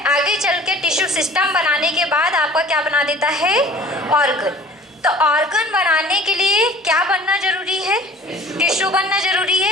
आगे चल के टिश्यू सिस्टम बनाने के बाद आपका क्या बना देता है, ऑर्गन। तो ऑर्गन बनाने के लिए क्या बनना जरूरी है, टिश्यू बनना जरूरी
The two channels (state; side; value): normal; both; correlation 0.47